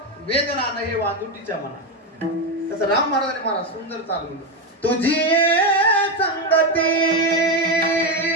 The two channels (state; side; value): normal; both; correlation 0.10